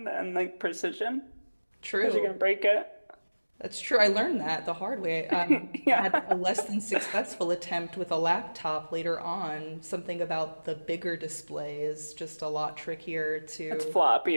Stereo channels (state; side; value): inverted; both; correlation -1.00